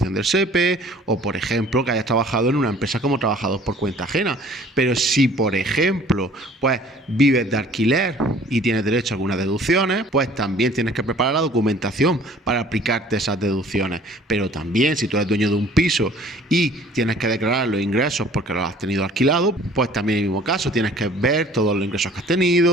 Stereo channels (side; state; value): both; normal; correlation 0.52